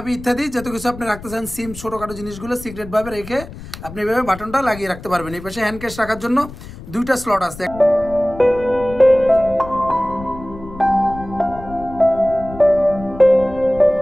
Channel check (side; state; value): left; noise; rumble, 15 dB below the sound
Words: ইত্যাদি যত কিছু আপনি রাখতে চান, সিম, ছোটখাটো জিনিসগুলো সিক্রেট ভাবে রেখে আপনি এভাবে বাটনটা লাগিয়ে রাখতে পারবেন। এই পাশে হ্যান্ড ক্যাশ রাখার জন্য দুইটা স্লট আছে।